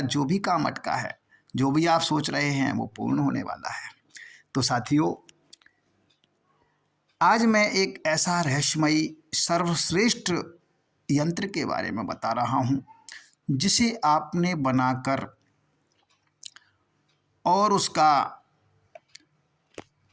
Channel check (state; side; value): identical; both; correlation 1.00